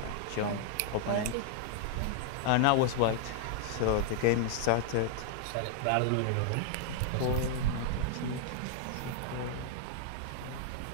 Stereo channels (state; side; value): different; both; correlation -0.01